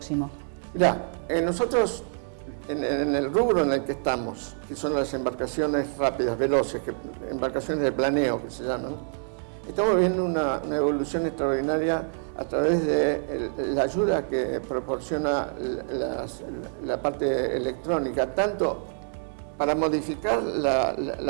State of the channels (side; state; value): left; silent; 60 dB below the other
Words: Mirá, nosotros en el rubro en el que estamos, que son las embarcaciones rápidas, veloces, embarcaciones de planeo que se llaman, estamos viendo una evolución extraordinaria a través de la ayuda que proporciona la parte electrónica, tanto para modificar